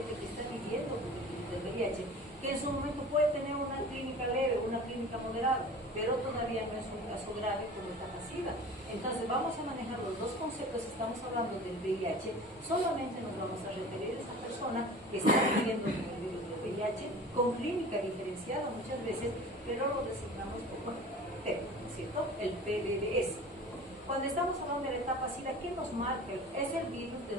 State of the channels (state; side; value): normal; both; correlation 0.40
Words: que está viviendo con el virus del VIH, que en su momento puede tener una clínica leve, una clínica moderada, pero todavía no es un caso grave como etapa SIDA. Entonces, vamos a manejar los dos conceptos. Estamos hablando del VIH, solamente nos vamos a referir a esa persona que está viviendo con el virus del VIH, con clínica diferenciada muchas veces, pero lo designamos como PEP, ¿no es cierto? El PBBS. Cuando estamos hablando de la etapa SIDA, ¿qué nos marca? Es el virus de